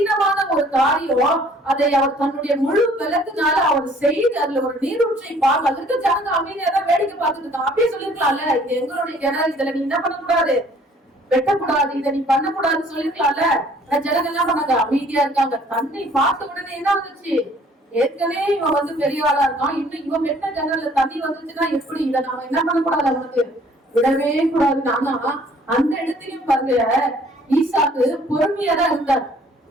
ஒரு காரியம், அதை அவர் தன்னுடைய முழு பலத்தினால அவர் செய்து அதுல ஒரு நீரூற்றை பார்க்க, அதற்கு ஜனங்க அமைதியா தான் வேடிக்கை பார்த்துட்டு இருக்காங்க. அப்படியே சொல்லிருக்கலாம்ல, இது எங்களுடைய கிணறு, இதுல நீ என்ன பண்ணக்கூடாது, வெட்டக்கூடாது, இதை நீ பண்ணக்கூடாதுன்னு சொல்லிருக்கலாம்ல. ஜனங்க என்ன பண்ணாங்க, அமைதியா இருக்காங்க. தண்ணி பார்த்த உடனே என்ன வந்துச்சு, ஏற்கனவே இவன் வந்து பெரிய ஆளா இருக்கான், இன்னும் இவன் வெட்ட கிணறுல தண்ணி வந்துச்சுன்னா எப்படி, இதை நாம என்ன பண்ணக்கூடாது, அவனுக்கு விடவே கூடாது. ஆனா அந்த இடத்திலையும் பாருங்க, ஈசாக்கு பொறுமையா தான் இருந்தார்.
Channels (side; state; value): both; normal; correlation 0.57